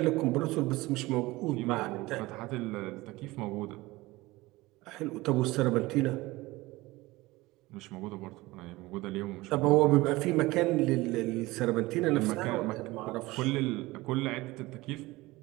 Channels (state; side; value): quieter; left; 20.2 dB